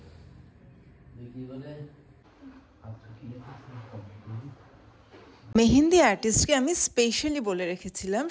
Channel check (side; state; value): both; identical; correlation 1.00